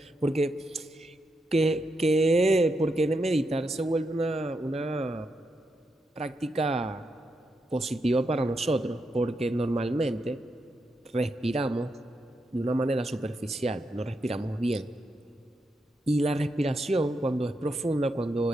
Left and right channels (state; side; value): normal; both; correlation 0.83